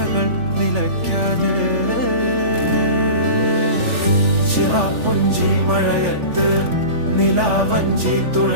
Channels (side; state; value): left; late; 3.4 ms